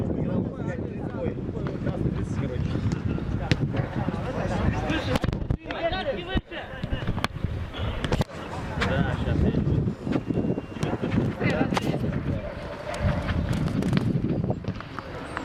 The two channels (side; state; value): both; identical; correlation 1.00